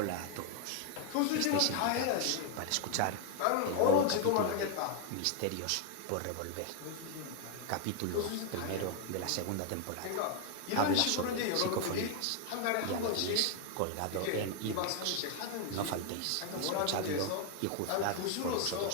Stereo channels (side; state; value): both; different; correlation 0.00